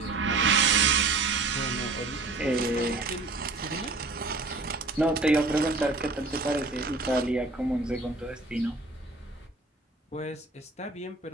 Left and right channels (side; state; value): left; quieter; 3.5 dB